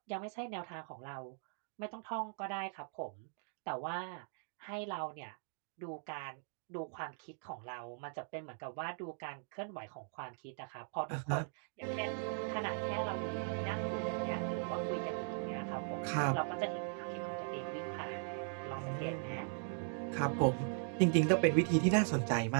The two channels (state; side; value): silent; left; 52 dB below the other